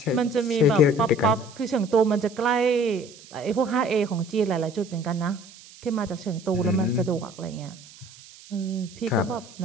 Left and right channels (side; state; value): right; noise; hiss, 21 dB below the sound